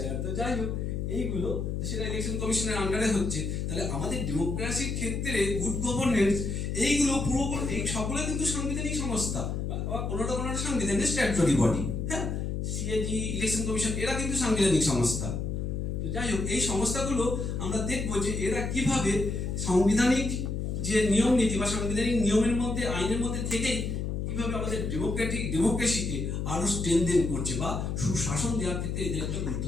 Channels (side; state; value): left; noise; hum, 2 dB below the sound